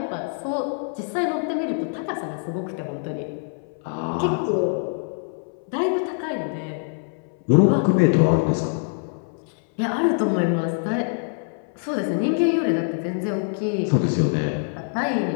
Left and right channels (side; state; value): right; silent; 62 dB below the other